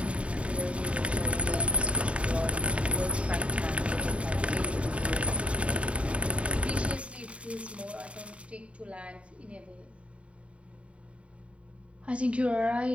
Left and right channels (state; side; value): late; left; 0.061 ms